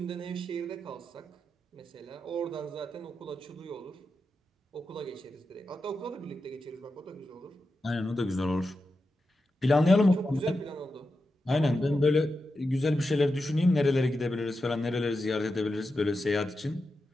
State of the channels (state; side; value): normal; both; correlation 0.89